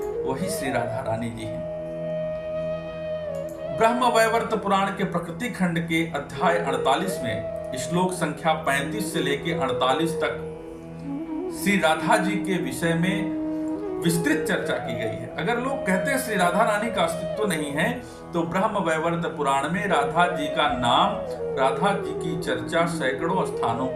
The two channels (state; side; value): identical; both; correlation 1.00